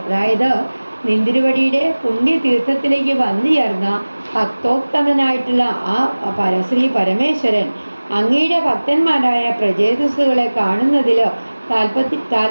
അതായത് നിന്തിരുവടിയുടെ പുണ്യതീർത്ഥത്തിലേക്ക് വന്നു ചേർന്ന ഭക്തോത്തമനായിട്ടുള്ള ആ ശ്രീ പരമേശ്വരൻ അങ്ങയുടെ ഭക്തന്മാരായ പ്രചേതസ്സുകളെ കാണുന്നതിൽ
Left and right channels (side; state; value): both; inverted; correlation -1.00